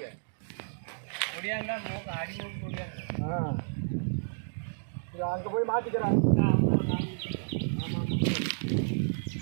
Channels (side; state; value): left; silent; digital silence